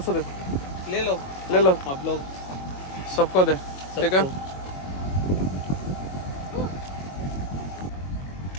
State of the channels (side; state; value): right; late; 22 ms